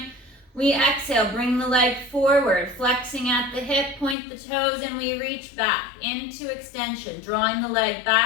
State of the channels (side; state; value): right; drops out; at 4.2 s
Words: We exhale, bring the leg forward, flexing at the hip, point the toes, and we reach back into extension, drawing the leg